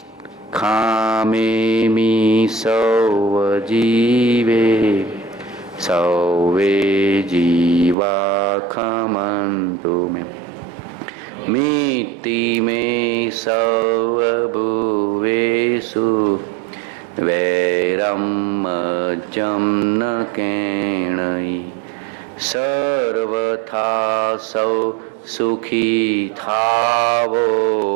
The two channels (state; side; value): drops out; left; at 8.0 s